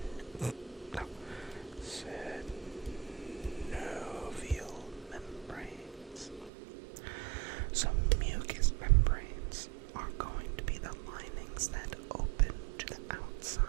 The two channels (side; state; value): left; drops out; at 6.5 s